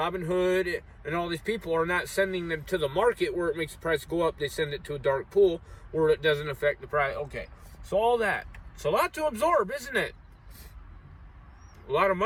and all these people are not sending them to the market where it makes the price go up. They send it to a dark pool where it doesn't affect the price. Okay, so all that. It's a lot to absorb, isn't it? A lot of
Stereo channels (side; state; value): both; identical; correlation 1.00